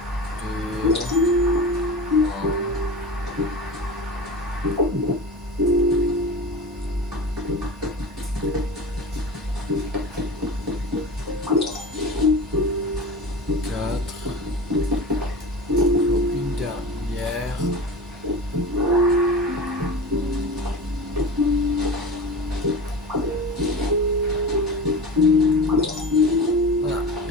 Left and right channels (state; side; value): normal; both; correlation 0.30